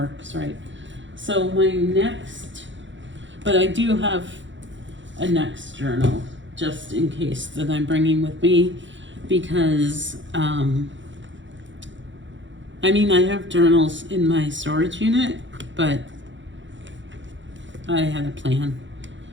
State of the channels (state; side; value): late; left; 0.54 ms